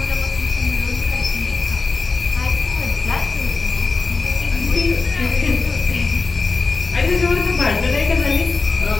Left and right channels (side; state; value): right; quieter; 4.1 dB